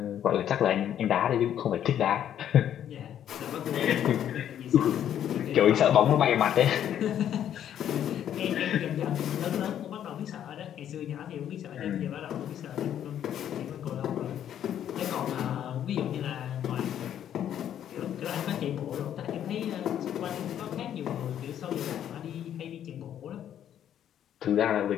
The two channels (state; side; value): quieter; right; 10.2 dB